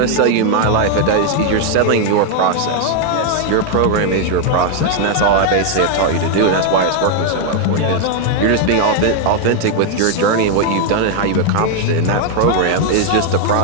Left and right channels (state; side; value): different; both; correlation 0.01